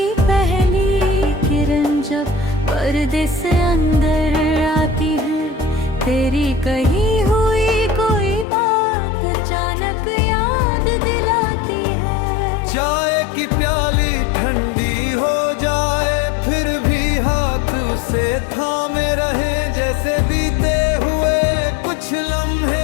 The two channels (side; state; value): right; drops out; at 8.5 s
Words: पहली किरण जब पर्दे से अंदर आती है, तेरी कही हुई कोई बात अचानक याद दिलाती है। चाय की प्याली ठंडी हो जाए फिर भी हाथ उसे थामे रहे, जैसे बीते हुए कुछ